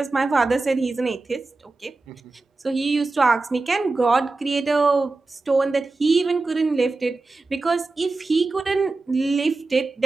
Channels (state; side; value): quieter; left; 3.5 dB